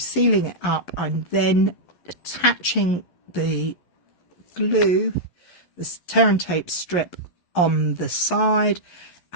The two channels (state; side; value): late; right; 11 ms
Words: it up. I'm then attaching the glue, the tear and tape strip on the side